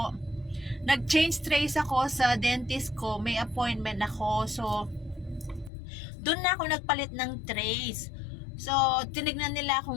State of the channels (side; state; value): right; drops out; at 5.7 s